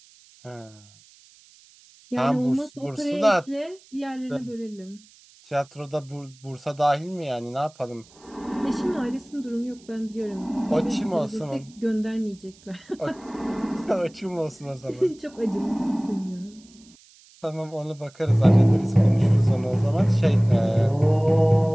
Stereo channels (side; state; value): right; noise; hiss, 27 dB below the sound